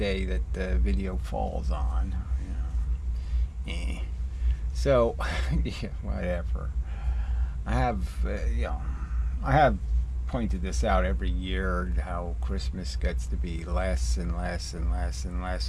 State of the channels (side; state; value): both; identical; correlation 1.00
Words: that the video falls on. So yeah, whatever. I have pointed this out every year, how Christmas gets to be less and less and less and